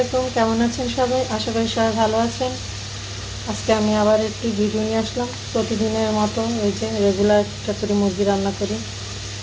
কেমন আছেন সবাই? আশা করি সবাই ভালো আছেন। আজকে আমি আবার একটি ভিডিও নিয়ে আসলাম। প্রতিদিনের মতো এই যে রেগুলার একটা করে মুরগি রান্না করি।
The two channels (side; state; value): both; identical; correlation 1.00